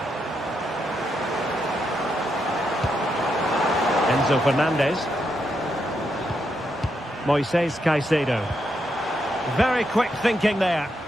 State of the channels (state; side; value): normal; both; correlation 0.81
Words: Enzo Fernandez. Moises Caicedo. Very quick thinking there.